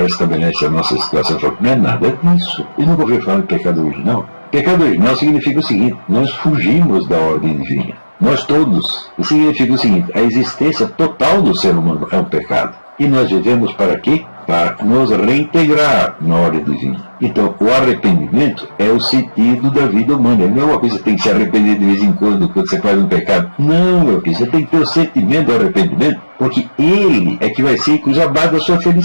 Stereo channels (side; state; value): both; inverted; correlation -1.00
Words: a nossa situação. Não é nada disso. Eu nunca ouvi falar de pecado original. Pecado original significa o seguinte: nós fugimos da ordem divina. Nós todos. Isso significa o seguinte: a existência total do ser humano é um pecado. E nós vivemos para quê? Para nos reintegrar na ordem divina. Então, o arrependimento é o sentido da vida humana. Não é uma coisa que você tem que se arrepender de vez em quando você faz um pecado. Não, meu filho, você tem que ter o sentimento do arrependimento, porque ele é que vai ser a base da sua